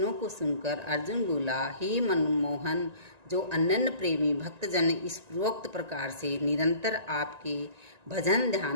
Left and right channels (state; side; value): late; left; 1.9 ms